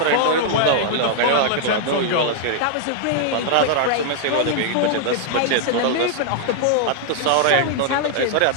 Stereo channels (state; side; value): different; both; correlation -0.01